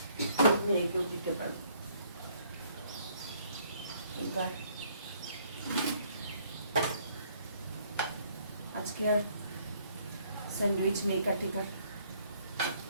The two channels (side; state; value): both; inverted; correlation -0.64